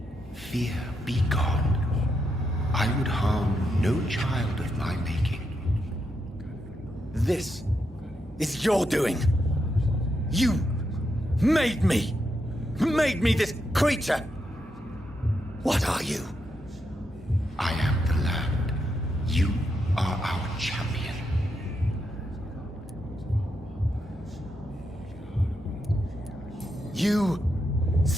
Fear be gone. I would harm no child of my making. This is your doing. You made me. Made me this creature. What are you? I am the land. You are our champion. You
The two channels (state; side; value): normal; both; correlation 0.82